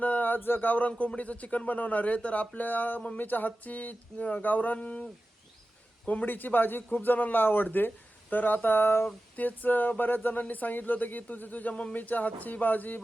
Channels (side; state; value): both; normal; correlation 0.94